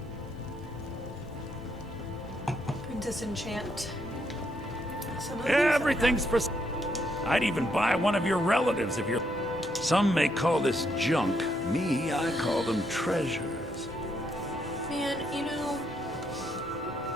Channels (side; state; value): both; normal; correlation 0.75